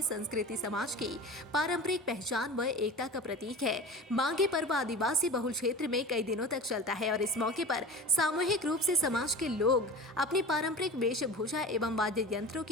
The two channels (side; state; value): both; normal; correlation 0.33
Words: संस्कृति समाज की पारंपरिक पहचान व एकता का प्रतीक है। माघी पर्व आदिवासी बहुल क्षेत्र में कई दिनों तक चलता है और इस मौके पर सामूहिक रूप से समाज के लोग अपनी पारंपरिक वेशभूषा एवं वाद्य यंत्रों